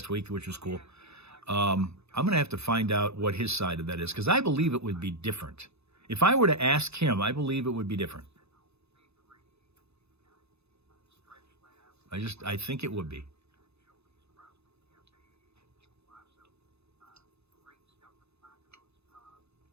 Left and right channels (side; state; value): left; late; 0.79 ms